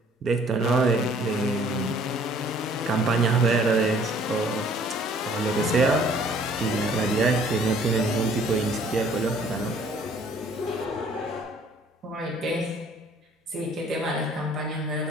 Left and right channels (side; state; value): both; normal; correlation 0.57